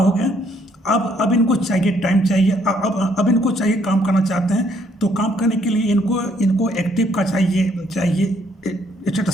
गया। अब इनको चाहिए टाइम चाहिए, अब इनको चाहिए, काम करना चाहते हैं। तो काम करने के लिए इनको एक्टिव का चाहिए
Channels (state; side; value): normal; both; correlation 0.67